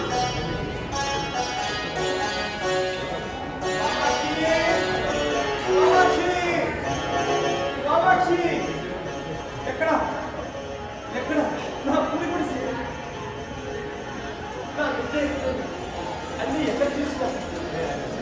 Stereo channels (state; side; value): identical; both; correlation 1.00